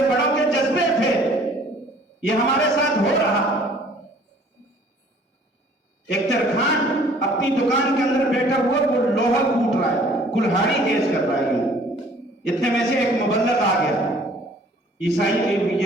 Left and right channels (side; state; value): both; normal; correlation 0.55